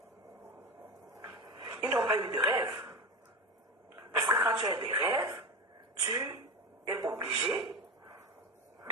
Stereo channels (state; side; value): normal; both; correlation 0.23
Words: Ils n'ont pas eu de rêve. Parce que quand tu as des rêves, tu es obligé